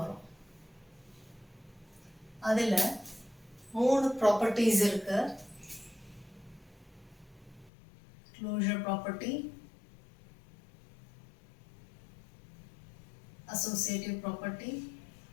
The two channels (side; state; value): right; drops out; at 7.7 s